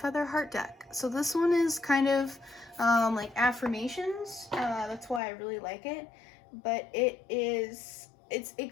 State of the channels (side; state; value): right; drops out; at 5.2 s